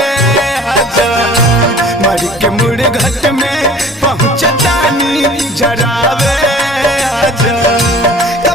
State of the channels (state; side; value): normal; both; correlation 0.47